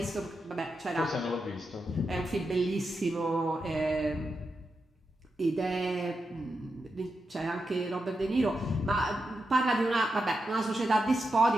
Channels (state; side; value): normal; both; correlation 0.87